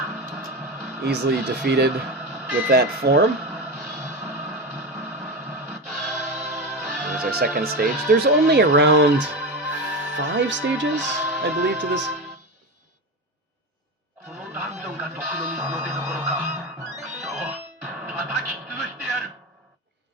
easily defeated with that form. Here's our second stage. There's only around 5 stages, I believe, to this.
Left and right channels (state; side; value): normal; both; correlation 0.20